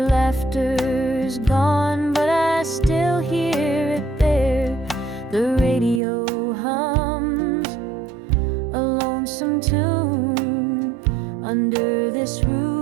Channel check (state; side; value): drops out; left; at 6.0 s